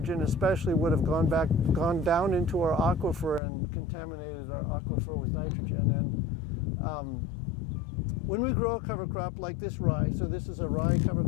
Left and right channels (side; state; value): right; drops out; at 3.4 s